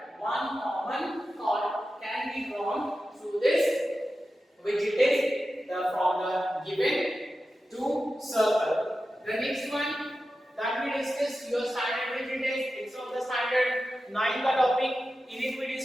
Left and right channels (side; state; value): both; normal; correlation 0.92